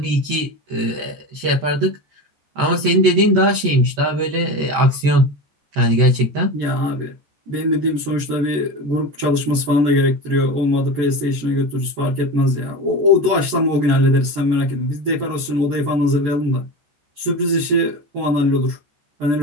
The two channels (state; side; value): late; left; 14 ms